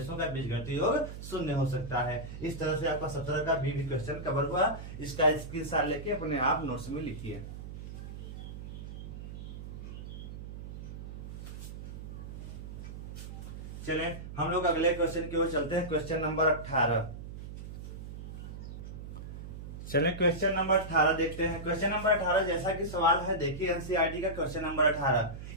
का बीजगणितीय योग शून्य हो सकता है। इस तरह से आपका 17 का भी क्वेश्चन कवर हुआ। इसका स्क्रीनशॉट लेके अपने आप नोट्स में लिखिए। चलें हम लोग अगले क्वेश्चन की ओर चलते हैं। Question number 18। चलें क्वेश्चन नंबर 18 देखते हैं। क्वेश्चन नंबर 18 जैसा कि सवाल है, देखिए एनसीईआरटी का क्वेश्चन नंबर 18।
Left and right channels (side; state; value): right; noise; hum, 10 dB below the sound